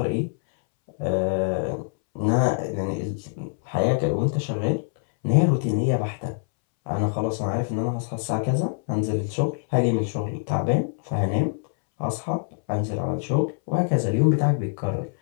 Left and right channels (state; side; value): silent; right; 62 dB below the other